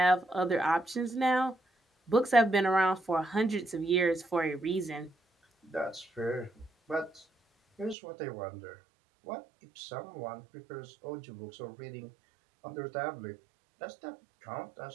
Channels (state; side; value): drops out; left; at 8.0 s